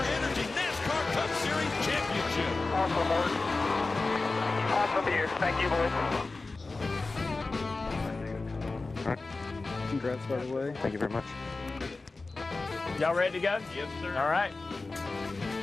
Energy NASCAR Cup Series championship. Awesome work. Awesome here. Thank you, boys. Congrats, by the way. Thank you very much. Y'all ready to go? Yes, sir. All right.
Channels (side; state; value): right; quieter; 3.6 dB